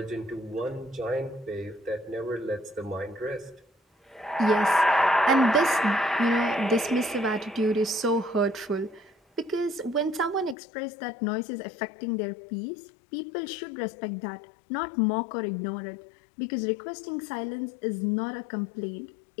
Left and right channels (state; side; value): drops out; right; at 10.6 s